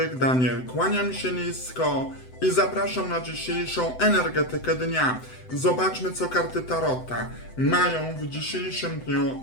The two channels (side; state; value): right; late; 7.9 ms